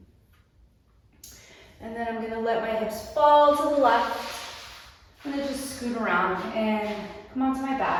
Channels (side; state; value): both; identical; correlation 1.00